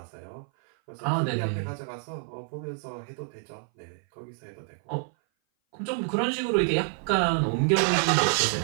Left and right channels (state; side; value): silent; left; 58 dB below the other